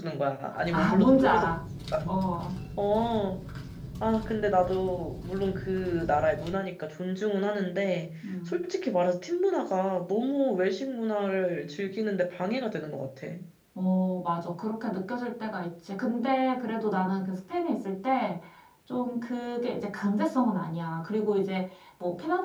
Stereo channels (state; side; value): identical; both; correlation 1.00